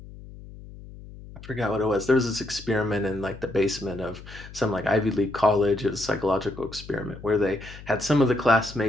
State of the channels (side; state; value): left; noise; hum, 16 dB below the sound